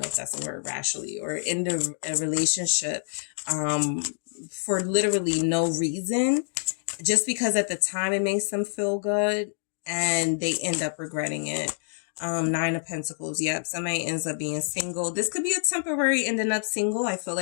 if that's a word, rationally, or end a relationship for literally no reason, just because at the time it makes them feel good and they end up regretting it. Nine of Pentacles. Yep. Somebody ends up being single. This could be a temporary ending up single. I feel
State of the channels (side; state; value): right; silent; digital silence